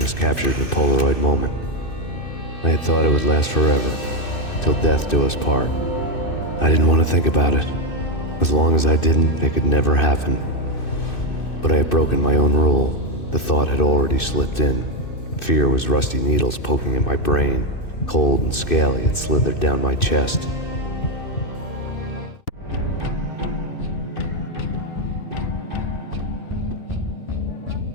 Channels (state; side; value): late; right; 2.6 ms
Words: captured in a Polaroid moment. I had thought it would last forever, till death do us part. I didn't want to think about it. As long as I didn't, it could never happen. But I had broken my own rule. The thought had already slipped in. Fear was rusty needles poking at my brain. Cold and scaly, it slithered down my chest.